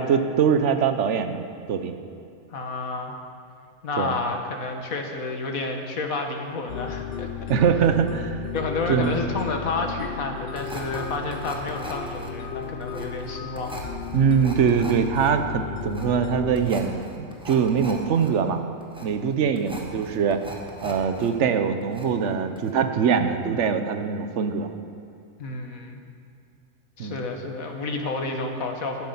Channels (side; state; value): left; quieter; 4.1 dB